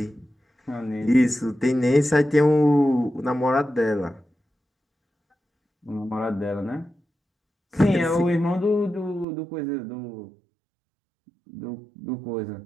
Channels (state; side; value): drops out; left; at 9.2 s